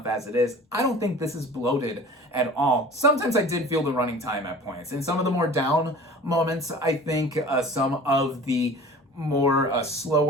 as it is. I don't think this is bloated at all. Sometimes I did feel the running time at points. In some of the more down moments, I think some of the more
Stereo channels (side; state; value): both; normal; correlation 0.43